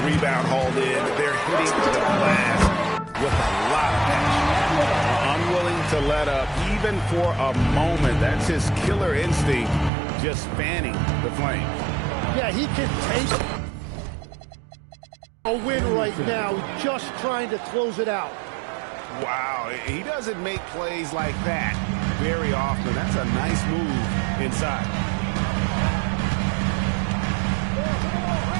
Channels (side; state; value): left; drops out; at 9.9 s